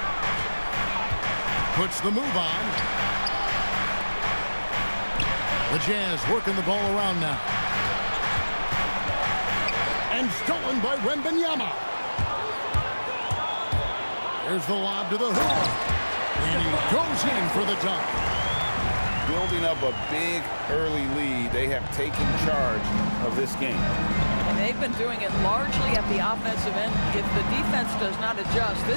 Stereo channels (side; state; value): both; inverted; correlation -1.00